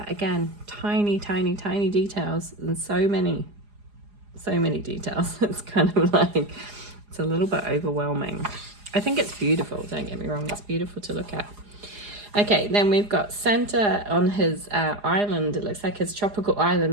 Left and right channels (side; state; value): left; late; 4.8 ms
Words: again, tiny details, and so many details. It's kind of like, it's a little bit overwhelming. I think it's beautiful, don't get me wrong, it's beautiful to look at. Okay, then we've got Santa on his island. It looks like his tropical